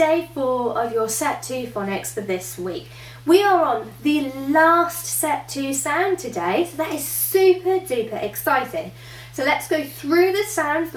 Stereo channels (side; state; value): both; identical; correlation 1.00